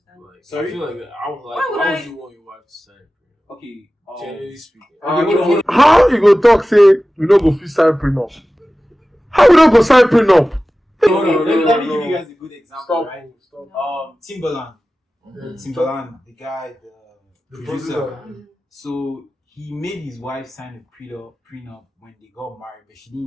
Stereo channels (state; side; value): normal; both; correlation 0.96